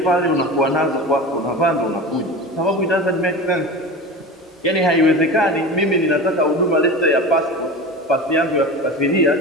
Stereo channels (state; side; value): normal; both; correlation 0.30